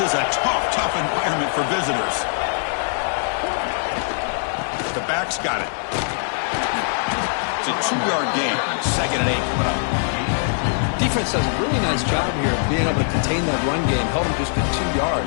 a tough environment for visitors. The back's got it. It's a 2-yard gain. 2nd and 8 coming up. Defense does a really nice job here of being able to contain that run game. Held him just to 2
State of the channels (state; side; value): silent; right; digital silence